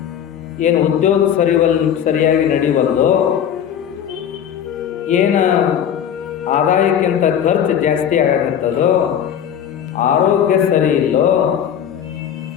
ಏನು ಉದ್ಯೋಗ ಸರಿಯಾಗಿ ನಡೆಯುವಲ್ಲೋ, ಏನು ಆದಾಯಕ್ಕಿಂತ ಖರ್ಚು ಜಾಸ್ತಿ ಆಗತ್ತದೋ, ಆರೋಗ್ಯ ಸರಿ ಇಲ್ಲೋ,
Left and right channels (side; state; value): right; quieter; 9.1 dB